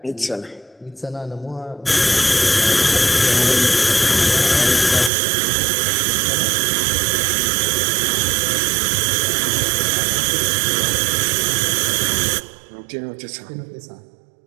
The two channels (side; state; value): left; drops out; at 5.1 s